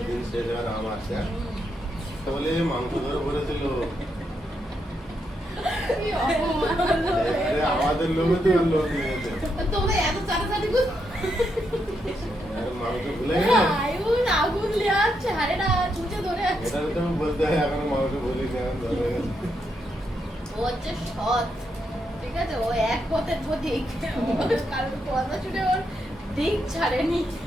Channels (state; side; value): normal; both; correlation 0.81